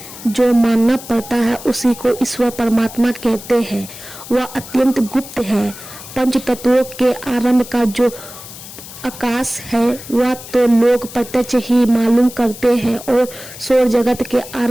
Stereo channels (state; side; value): noise; left; hiss, 15 dB below the sound